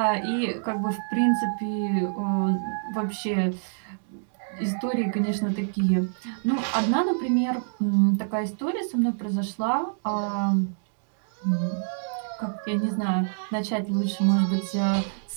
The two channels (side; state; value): left; silent; digital silence